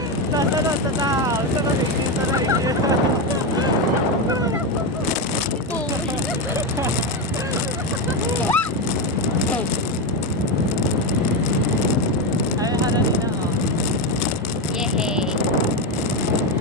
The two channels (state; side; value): normal; both; correlation 0.11